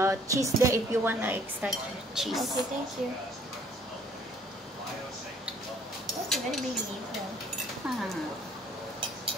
cheese there if you want extra cheese. Okay, thank you. That's a very big beehon.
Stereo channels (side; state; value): both; normal; correlation 0.59